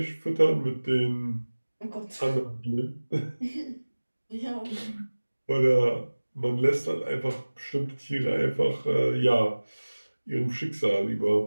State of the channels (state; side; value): inverted; both; correlation -1.00